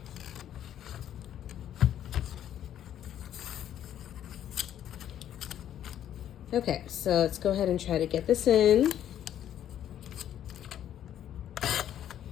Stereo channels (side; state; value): right; quieter; 10.7 dB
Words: Okay, so let's go ahead and try to get this in.